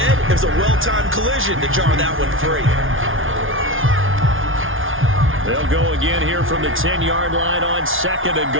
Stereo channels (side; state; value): left; late; 0.58 ms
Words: it was a well-timed collision to jar that one free. They'll go again here from the 10-yard line on 2nd and